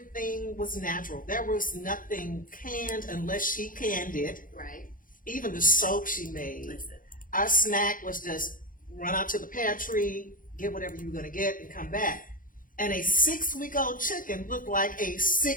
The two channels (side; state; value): right; late; 0.40 ms